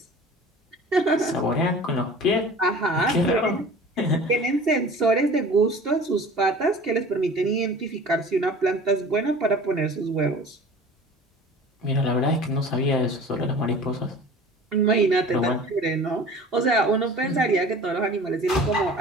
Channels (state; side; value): normal; both; correlation 0.42